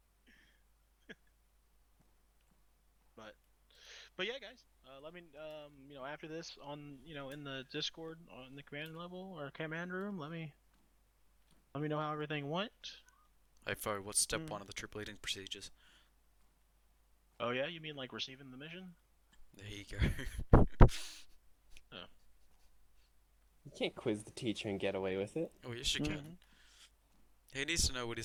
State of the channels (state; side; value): identical; both; correlation 1.00